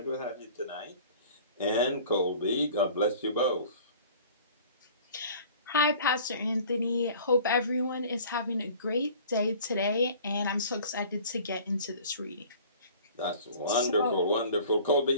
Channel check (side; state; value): both; inverted; correlation -0.47